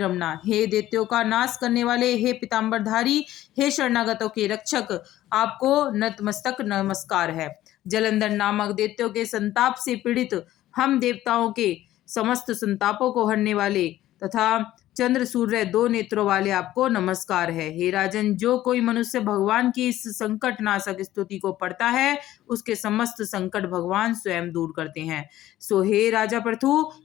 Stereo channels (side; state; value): right; quieter; 14.3 dB